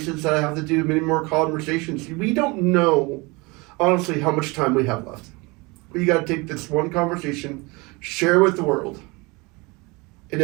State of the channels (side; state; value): left; quieter; 26.0 dB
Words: that I have to do, many more conversations. We don't know, honestly, how much time we have left. But you got to take this one conversation, share with the world. And